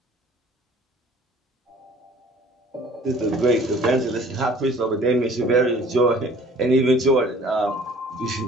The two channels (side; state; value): both; normal; correlation 0.52